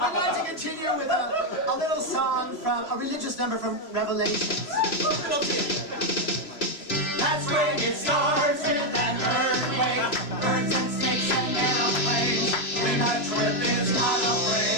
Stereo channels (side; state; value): right; late; 3.0 ms